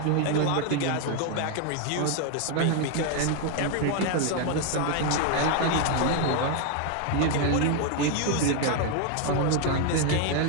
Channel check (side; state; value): both; different; correlation 0.01